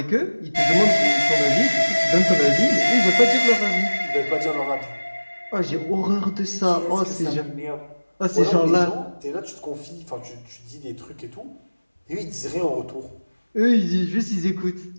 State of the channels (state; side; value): inverted; both; correlation -1.00